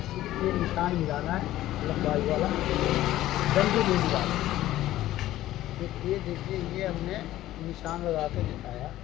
सिर्फ ये निशान मिलाना है, लंबाई वाला, डंडी नहीं मिलाना। तो ये देखिए ये हमने निशान लगा के दिखाया।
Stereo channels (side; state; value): right; quieter; 14.6 dB